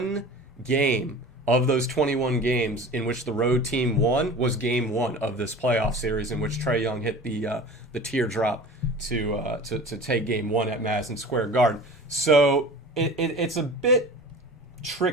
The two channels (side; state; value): both; normal; correlation 0.39